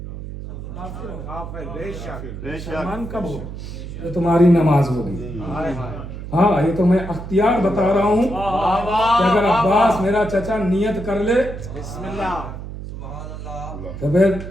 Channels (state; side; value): noise; right; hum, 9 dB below the sound